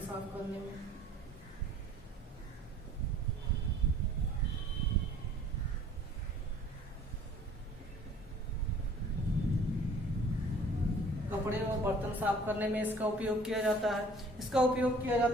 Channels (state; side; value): normal; both; correlation 0.52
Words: साफ करने में, कपड़े और बर्तन साफ करने में इसका उपयोग किया जाता है। इसका उपयोग किया